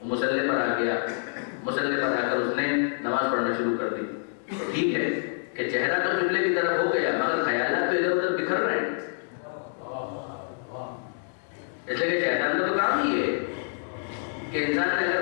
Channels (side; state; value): right; silent; digital silence